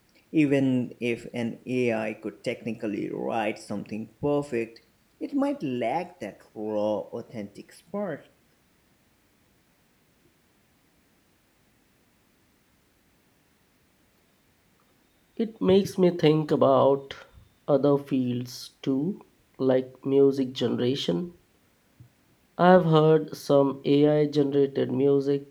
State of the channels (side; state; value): both; identical; correlation 1.00